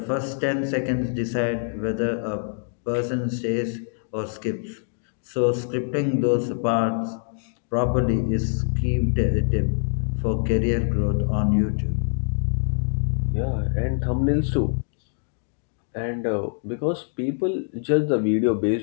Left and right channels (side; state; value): right; silent; 62 dB below the other